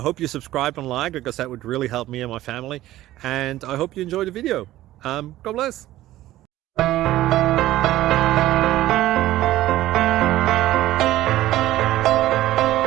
hope you subscribe and like, because that would really help me and my family. And I hope you enjoy the video. God bless.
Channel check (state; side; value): quieter; left; 15.0 dB